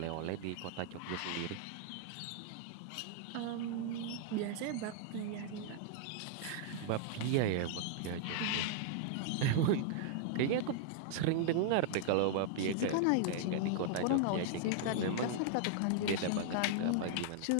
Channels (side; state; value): both; different; correlation -0.01